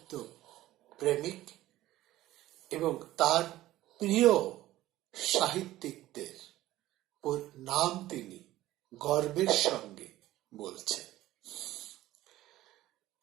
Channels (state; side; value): quieter; left; 15.4 dB